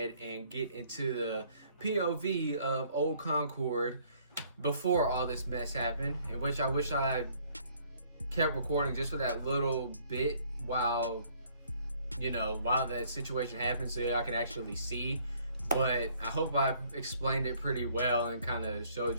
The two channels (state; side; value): inverted; both; correlation -0.62